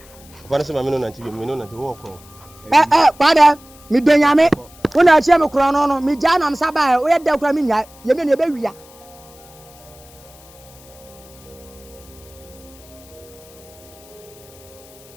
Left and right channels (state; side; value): noise; left; hiss, 24 dB below the sound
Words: Kwa na se ma me no na nti bi, me no na nti wo ko. Kwada mi benyame wona chem kro no mi ja na msa ba o ye da kra mi nya ye me ne be wia